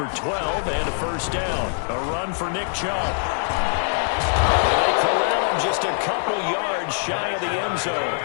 12 and a first down. A run for Nick Chubb. They corral him just a couple yards shy of the end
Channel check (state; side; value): silent; right; 63 dB below the other